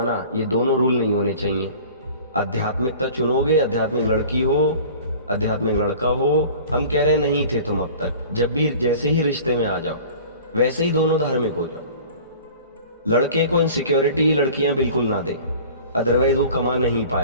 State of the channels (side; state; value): both; inverted; correlation -0.44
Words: ये दोनों रूल नहीं होने चाहिए। आध्यात्मिकता चुनोगे, आध्यात्मिक लड़की हो, आध्यात्मिक लड़का हो, हम कह रहे नहीं थे तुम अब तक, जब भी जैसे ही रिश्ते में आ जाओ वैसे ही दोनों धार्मिक हो जाओ। लड़के को इनसिक्योरिटी लड़कियां बिल्कुल ना दे, अदरवाइज वो कमा नहीं